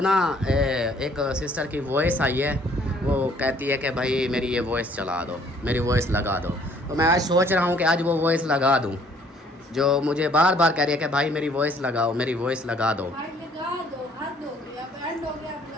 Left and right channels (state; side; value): normal; both; correlation 0.60